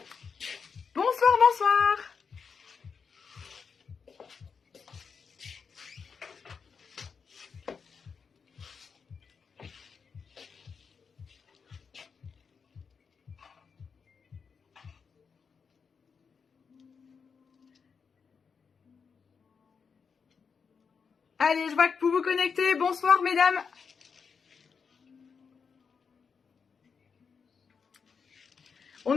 Bonsoir, bonsoir. Allez, je vois que vous vous connectez. Bonsoir, mesdames.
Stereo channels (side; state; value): right; quieter; 5.9 dB